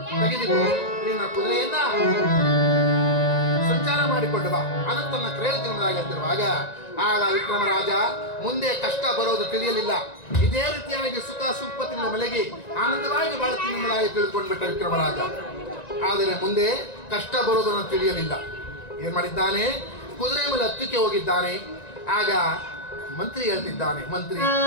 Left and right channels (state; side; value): late; right; 1.9 ms